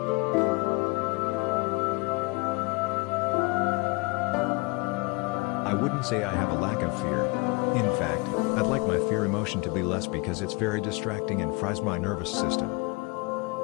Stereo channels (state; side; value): quieter; right; 26.8 dB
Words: I wouldn't say I have a lack of fear. In fact, I'd like my fear emotion to be less because it's very distracting and fries my nervous system.